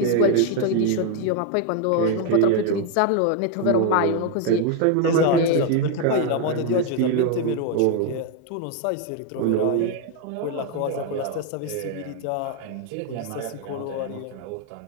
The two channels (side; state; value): both; different; correlation 0.01